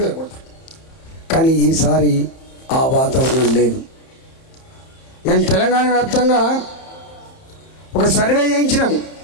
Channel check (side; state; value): right; late; 31 ms